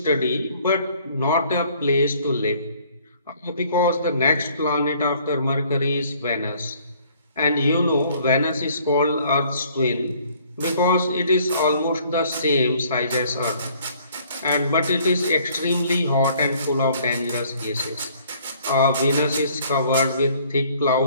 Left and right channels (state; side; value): inverted; both; correlation -0.59